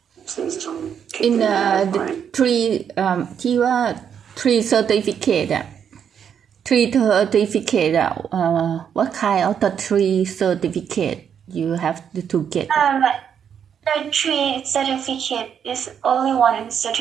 in the three certificate, what kind of the three certificate you have to get? The three certificate is only one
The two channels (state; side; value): quieter; left; 8.1 dB